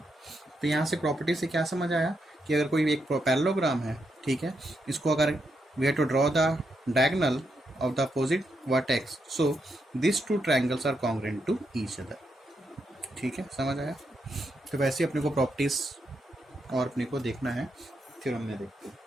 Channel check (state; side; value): normal; both; correlation 0.82